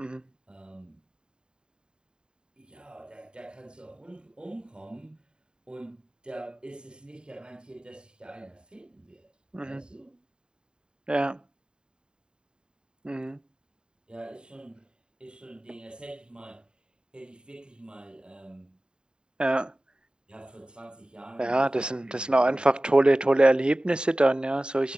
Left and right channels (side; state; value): left; late; 0.049 ms